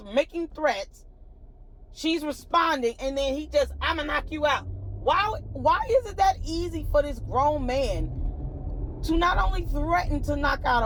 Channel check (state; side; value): identical; both; correlation 1.00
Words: making threats. She's responding, and then he just, I'm gonna knock you out. Why is it that easy for this grown man to not only threaten to knock out